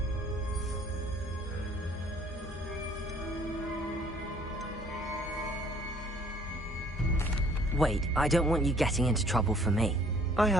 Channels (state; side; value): normal; both; correlation 0.58